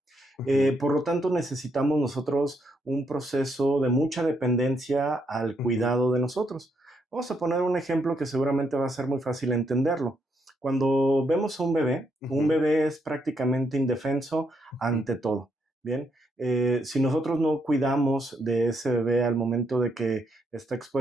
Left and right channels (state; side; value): normal; both; correlation 0.77